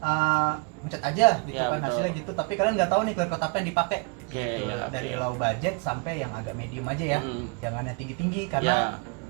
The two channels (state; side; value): quieter; left; 31.5 dB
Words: ngecat aja gitu Ya, kan betul. hasilnya gitu, tapi kalian nggak tahu nih clear coat apa yang dipakai. Oke, Gitu. ya, Dari oke. low budget sampai yang agak medium aja ya. Jangan yang tinggi-tinggi Ya, karena